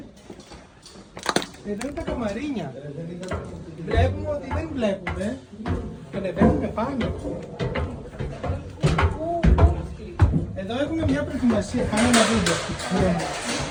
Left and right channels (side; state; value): both; identical; correlation 1.00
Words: Εδώ είναι τα καμαρίνια. Βλέπουμε ότι δεν βλέπουμε. Ανεβαίνουμε πάνω. Εδώ έχουμε μια προετοιμασία. Πάμε να δείτε.